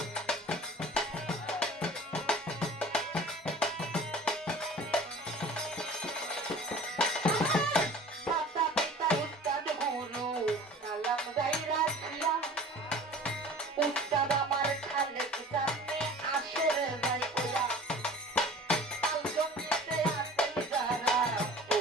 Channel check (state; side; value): normal; both; correlation 0.42